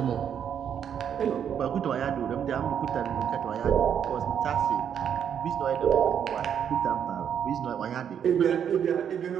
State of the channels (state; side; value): quieter; left; 8.5 dB